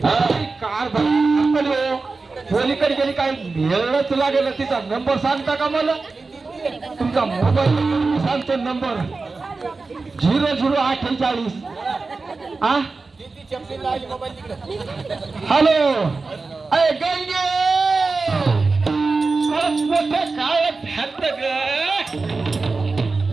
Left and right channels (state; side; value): quieter; left; 4.0 dB